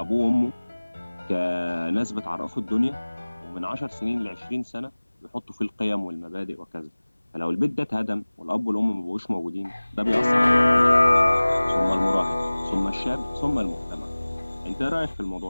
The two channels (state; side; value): inverted; both; correlation -1.00